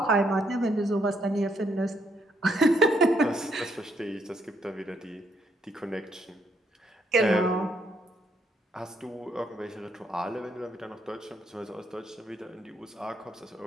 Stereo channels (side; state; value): both; normal; correlation 0.73